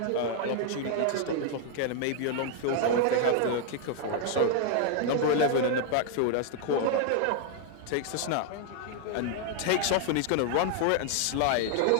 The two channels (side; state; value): both; different; correlation 0.00